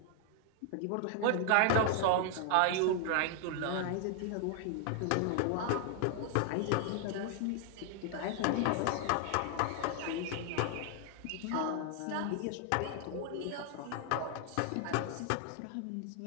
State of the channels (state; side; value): different; both; correlation 0.00